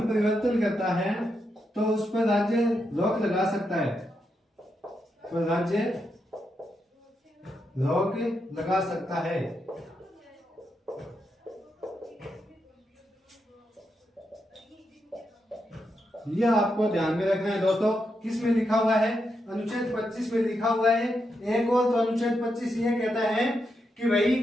परिवर्तन करता है तो उस पर राज्य रोक लगा सकता है, तो राज्य रोक लगा सकता है। यह आपको ध्यान में रखना है दोस्तों। किस में लिखा हुआ है, अनुच्छेद 25 में लिखा हुआ है। एक और तो अनुच्छेद 25 यह कहता है कि भाई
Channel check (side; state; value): both; normal; correlation 0.83